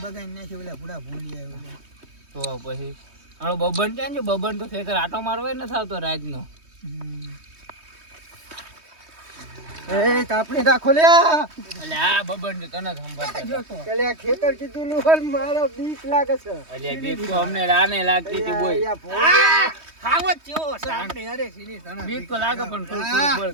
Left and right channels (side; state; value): left; late; 3.2 ms